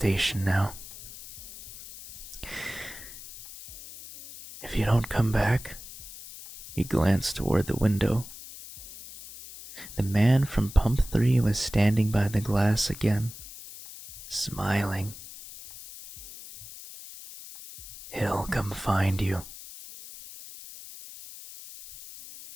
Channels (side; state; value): left; noise; hiss, 14 dB below the sound